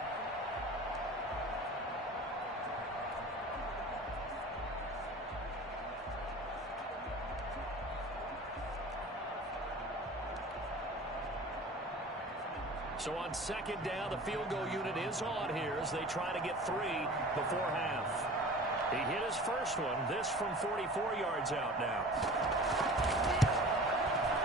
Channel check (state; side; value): normal; both; correlation 0.40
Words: So on 2nd down, the field goal unit is on here as they try to get 3 before half. He hit his first one. This from 44 yards out now.